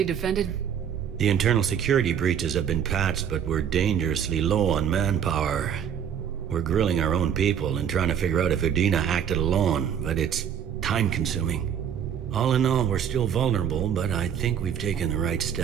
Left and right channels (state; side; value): quieter; left; 8.5 dB